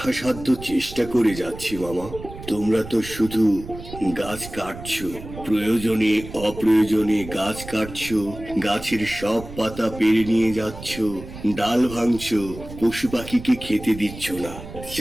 চেষ্টা করে যাচ্ছি মামা। তোমরা তো শুধু গাছ কাটছো, প্রয়োজনে অপ্রয়োজনে গাছ কাটছো, গাছের সব পাতা পেরে নিয়ে যাচ্ছ, ডাল ভাঙছো, পশু পাখিকে খেতে দিচ্ছ না।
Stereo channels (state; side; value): noise; right; rumble, 13 dB below the sound